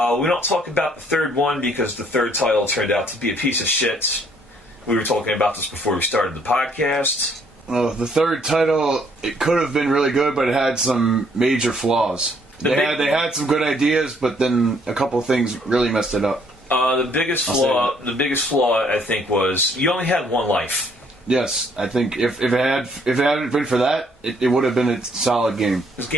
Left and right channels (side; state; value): both; normal; correlation 0.65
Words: don't talk about the third one because the third title turned out to be a piece of shit. We were talking about this before we started the podcast. Well, the third title, it could have been really good, but it had some major flaws. They had some good ideas, but then a couple of things really messed it up. The biggest flaw, I think, was you only had one life. Yes, I think if it hadn't been for that, it would have been a solid game. This